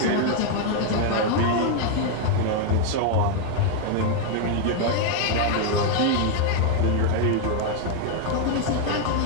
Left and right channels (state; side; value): different; both; correlation 0.00